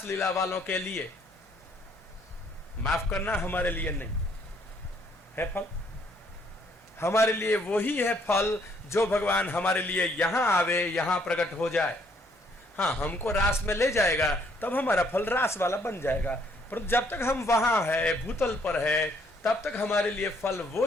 लीला वालों के लिए, माफ करना हमारे लिए नहीं है फल। हमारे लिए वही है फल जो भगवान हमारे लिए यहां आवे, यहां प्रकट हो जाए। हाँ, हमको रास में ले जाएगा तब हमारा फल रास वाला बन जाएगा, पर जब तक हम वहां है, भूतल पर है, तब तक हमारे लिए फल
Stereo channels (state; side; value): normal; both; correlation 0.67